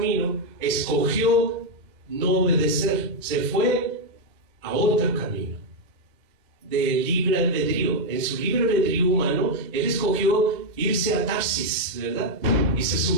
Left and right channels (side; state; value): left; late; 2.0 ms